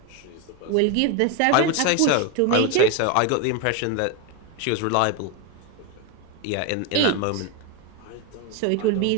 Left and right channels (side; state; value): both; different; correlation 0.02